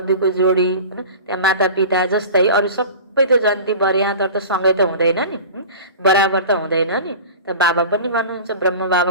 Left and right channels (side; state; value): both; inverted; correlation -0.36